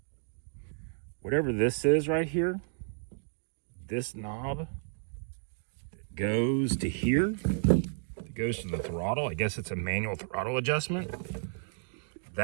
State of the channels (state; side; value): silent; left; digital silence